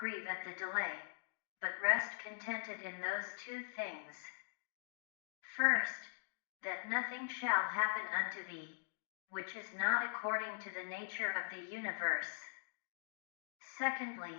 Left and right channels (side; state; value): right; silent; digital silence